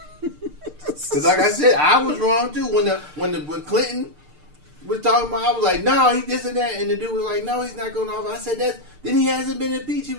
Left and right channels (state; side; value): late; left; 6.6 ms